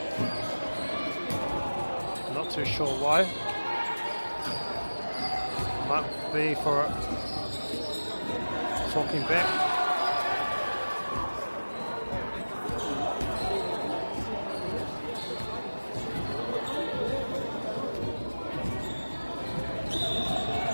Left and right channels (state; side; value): inverted; both; correlation -1.00